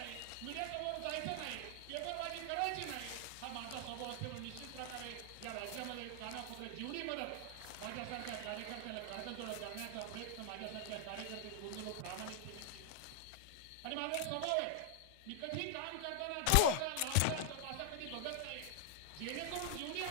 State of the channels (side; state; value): both; different; correlation 0.00